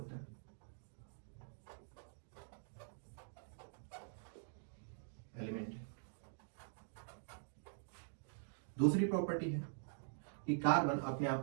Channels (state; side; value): silent; left; digital silence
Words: है, एलिमेंट है। दूसरी प्रॉपर्टी है कि कार्बन अपने आप